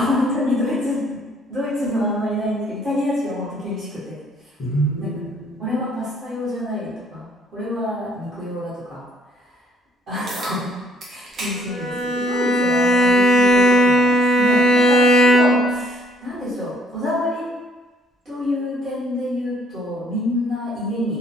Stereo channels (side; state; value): both; normal; correlation 0.63